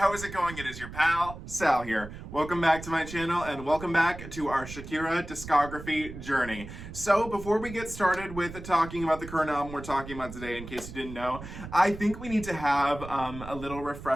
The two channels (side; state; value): right; noise; rumble, 12 dB below the sound